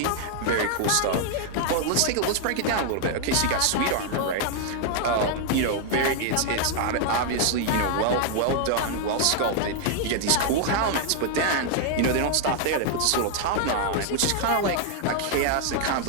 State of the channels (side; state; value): both; different; correlation 0.00